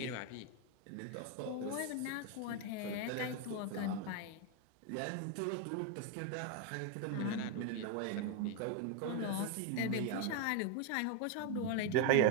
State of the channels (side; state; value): both; different; correlation 0.01